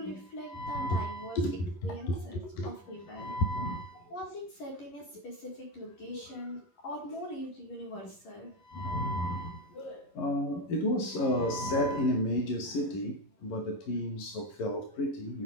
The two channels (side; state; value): right; late; 11 ms